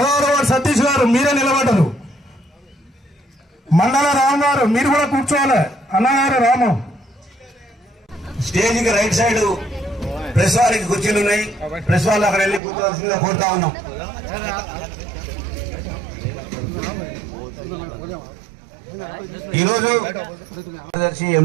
వార్డు సతీష్ గారు మీరే నిలబడ్డారు. మండల రామ్ గారు మీరు కూడా కూర్చోవాలి. అన్నగారు రాము. స్టేజ్ కి రైట్ సైడ్ ప్రెస్ వారికి కుర్చీలు ఉన్నాయి. ప్రెస్ వాళ్ళు అక్కడ వెళ్ళి కూర్చోవలసిందిగా కోరుతా ఉన్నాం. ఈరోజు కార్యదర్శి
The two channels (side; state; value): left; drops out; at 12.6 s